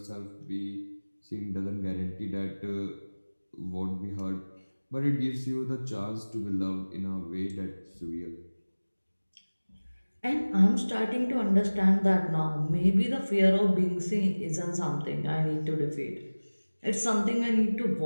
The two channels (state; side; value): inverted; both; correlation -1.00